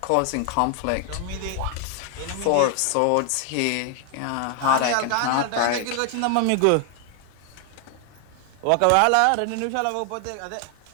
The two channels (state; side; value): different; both; correlation 0.00